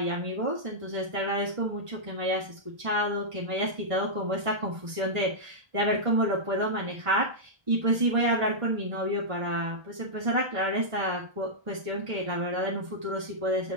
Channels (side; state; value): left; late; 1.3 ms